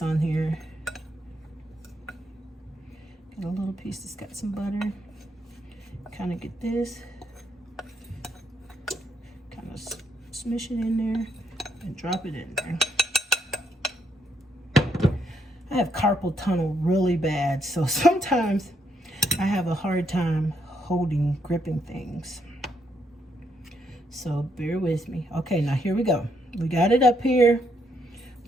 on here. Get a little piece that's got some butter. Kind of get this. Kind of smush it in there and drop it in there. I have carpal tunnel really bad, so sometimes I have a hard time gripping things. So bear with me. Okay, now here we go. We got it up here.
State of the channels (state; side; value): normal; both; correlation 0.75